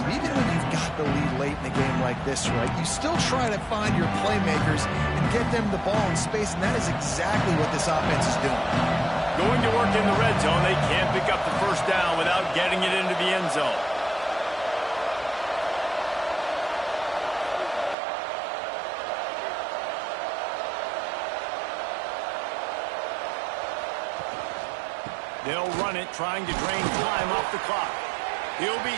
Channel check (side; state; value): left; drops out; at 17.9 s